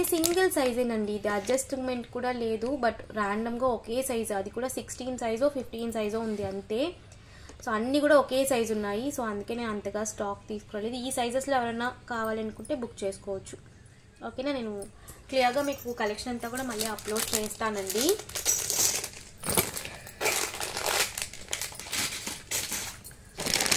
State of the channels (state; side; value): identical; both; correlation 1.00